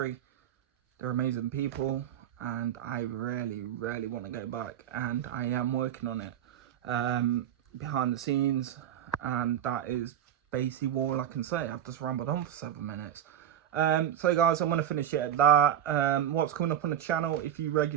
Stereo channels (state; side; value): quieter; left; 10.4 dB